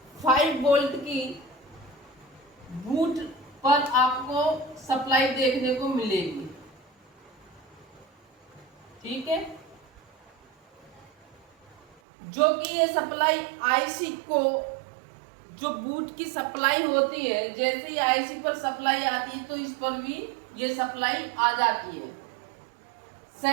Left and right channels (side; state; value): left; drops out; at 12.0 s